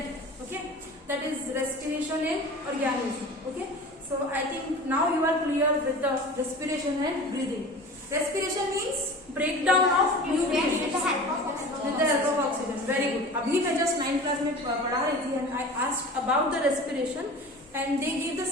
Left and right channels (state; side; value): normal; both; correlation 0.37